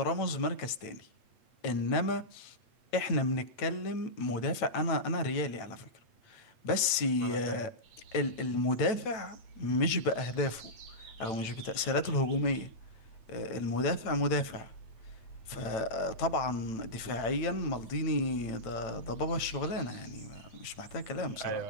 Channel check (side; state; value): right; late; 9.0 ms